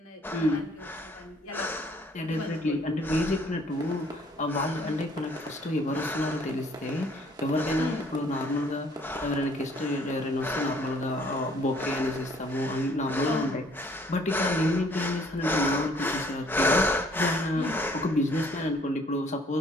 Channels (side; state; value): both; normal; correlation 0.60